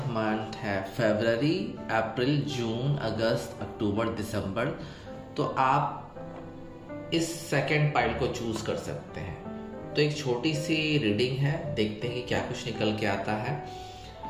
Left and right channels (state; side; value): identical; both; correlation 1.00